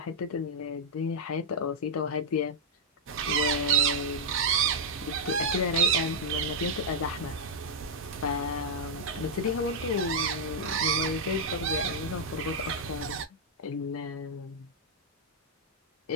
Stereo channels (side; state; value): both; normal; correlation -0.03